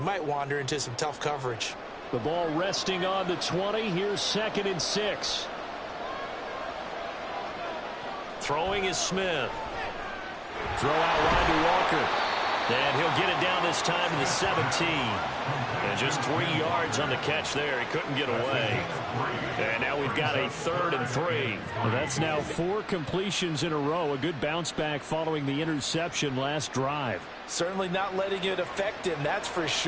wander into some tough coverage. The ball resting on the 20. Here's 2nd and 6. Throwing is Smith. Throw out wide to Walker. And he'll get it down this time to the 17. And just 3 yards on the catch there. He couldn't get away. And now we've got a 3rd and 3. Well, that's now 4 completions in a row. A good bounce back following the interception last drive. Certainly not letting it affect him, that's for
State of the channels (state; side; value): identical; both; correlation 1.00